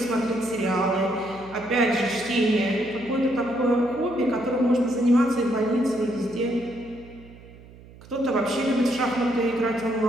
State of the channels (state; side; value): noise; right; hum, 21 dB below the sound